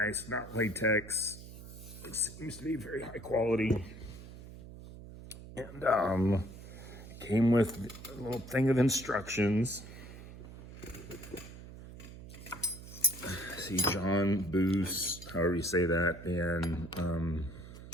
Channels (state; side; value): noise; right; hum, 14 dB below the sound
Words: not latex. It seems to be very high quality. And it came with a little thing of instructions. See, John Boos, however you say that, and